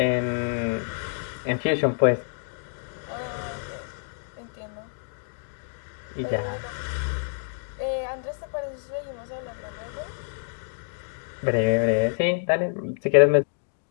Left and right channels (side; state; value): right; silent; digital silence